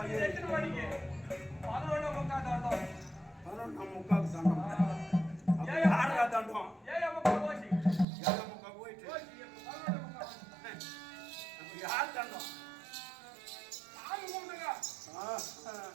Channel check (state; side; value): drops out; left; at 8.1 s